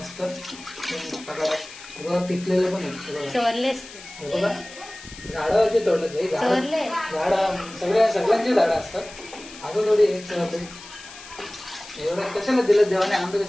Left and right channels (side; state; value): left; noise; hiss, 16 dB below the sound